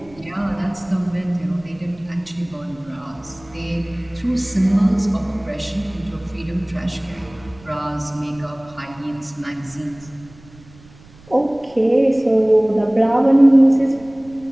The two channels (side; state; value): right; noise; rumble, 24 dB below the sound